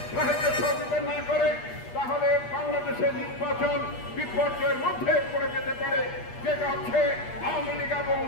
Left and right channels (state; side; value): late; right; 8.4 ms